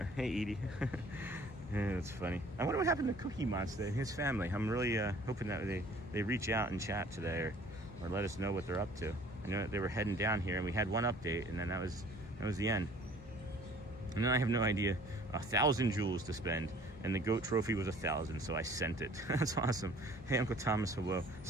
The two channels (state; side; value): normal; both; correlation 0.52